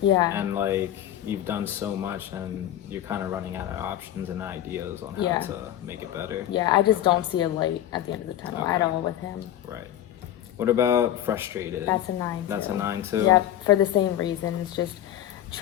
And like, you've done so much and you're kind of running out of options and ideas on how Yeah. to make it better. Yeah, I just don't see a light at the end of the tunnel at Okay. all with him. Right. What about frustrated? That's a 9 too. That's a 9 too? Yep, for the same reasons. Just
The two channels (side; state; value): right; quieter; 11.9 dB